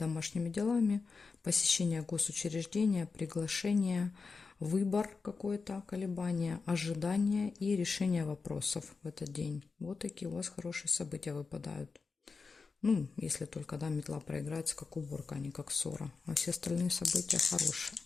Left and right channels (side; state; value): right; quieter; 4.6 dB